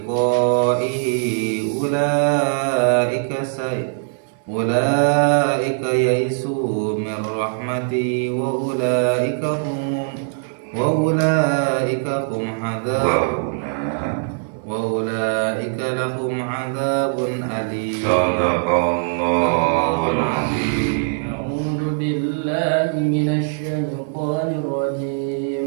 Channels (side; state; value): left; silent; 65 dB below the other